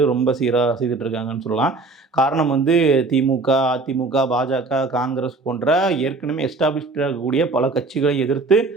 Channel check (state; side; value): quieter; left; 3.6 dB